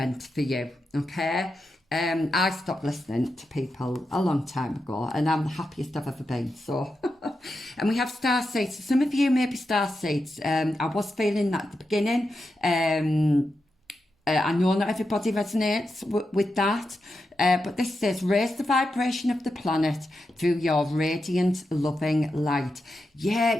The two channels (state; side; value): normal; both; correlation 0.88